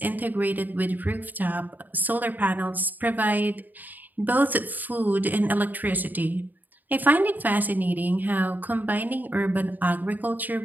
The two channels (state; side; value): late; left; 0.086 ms